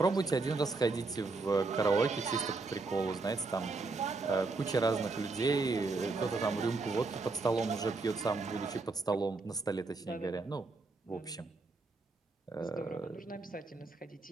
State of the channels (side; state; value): left; quieter; 3.8 dB